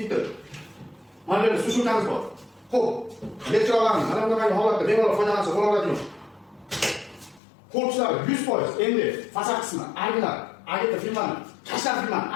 Mana bu sushulkamiz bor. Xo'p, elektrolarni mana bunday holatda bemalol foydalansa bo'laveradigan. Korpuslar 100%. Endi fasad qismi, arglar, agita filmani, tashlar filmani,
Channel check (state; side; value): drops out; right; at 7.4 s